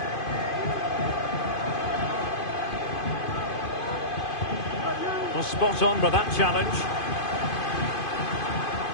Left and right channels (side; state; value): right; late; 2.5 ms